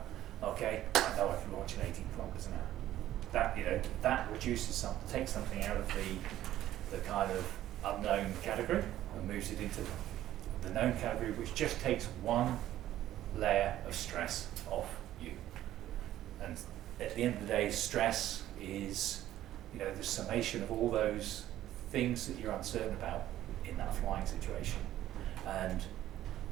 Okay, I know I can launch at 18 kilometers an hour. That reduces takes something out of the kind of unknown category and moves it into the known category, which just takes one layer of stress off you. And at the end of the day, stress is, the summation of all those things that you're uncertain about in that flying situation. And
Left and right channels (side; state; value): left; quieter; 13.2 dB